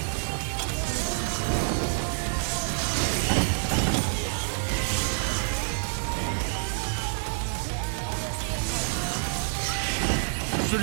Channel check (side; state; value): left; silent; 60 dB below the other